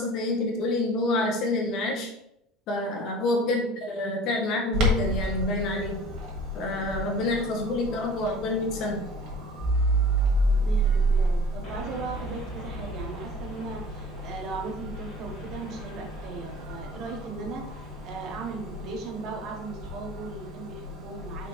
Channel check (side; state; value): both; normal; correlation 0.41